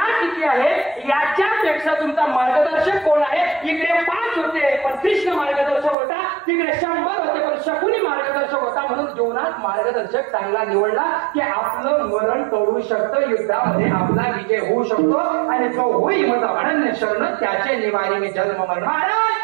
किती आहे याच्यापेक्षा तुमचा मार्गदर्शक कोण आहे? इकडे 5 होते पण कृष्ण मार्गदर्शक होता, तिकडे 100 होते पण शकुनी मार्गदर्शक होता. म्हणून जीवनात मार्गदर्शक चांगला निवडला की आपलं मरण टळू शकतं, युद्धामध्ये आपला विजय होऊ शकतो. आणि जो होई माझा अनन्य शरण त्याचे निवारी मी जन्म मरण. महाराज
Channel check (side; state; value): left; drops out; at 6.0 s